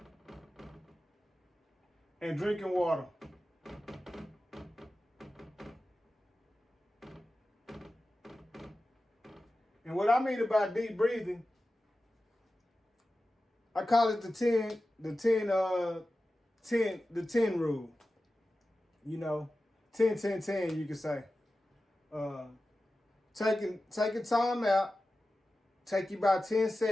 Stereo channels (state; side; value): normal; both; correlation 0.94